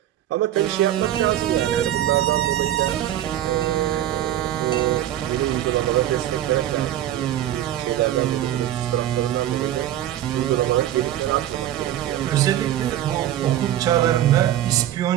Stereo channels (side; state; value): left; quieter; 12.3 dB